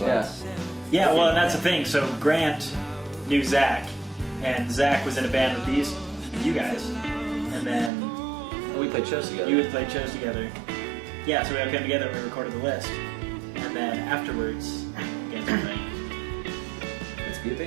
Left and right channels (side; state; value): left; drops out; at 7.9 s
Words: Yeah, well, and that's the thing. So Grant knew Zach, and Zach was in a band with you guys, and then We played shows together. you had played shows together. Yeah, so we all came together and we recorded The List, and then afterwards, again, we're like, Let's be a